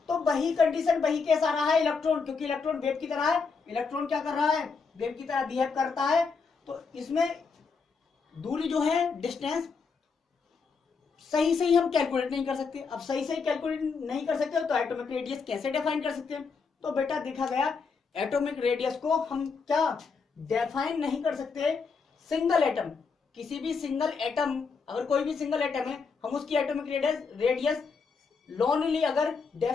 तो वही कंडीशन, वही केस आ रहा है इलेक्ट्रॉन, क्योंकि इलेक्ट्रॉन वेव की तरह है। इलेक्ट्रॉन क्या कर रहा है? वेव की तरह बिहेव करता है। तो इसमें दूरी जो है, डिस्टेंस सही हम कैलकुलेट नहीं कर सकते। अब सही कैलकुलेट नहीं कर सकते तो एटॉमिक रेडियस कैसे डिफाइन कर सकते हैं? तो बेटा देखा गया, एटॉमिक रेडियस को हम क्या डिफाइन नहीं कर सकते। सिंगल एटम, किसी भी सिंगल एटम, अगर कोई भी सिंगल एटम है, हम उसकी एटॉमिक रेडियस लोनली अगर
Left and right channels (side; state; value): right; quieter; 5.1 dB